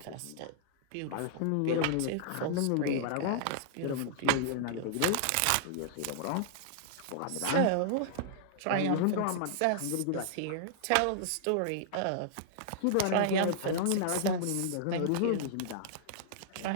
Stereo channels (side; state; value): both; different; correlation -0.01